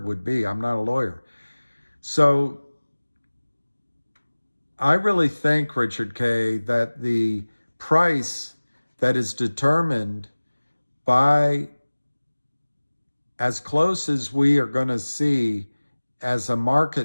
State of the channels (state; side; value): inverted; both; correlation -1.00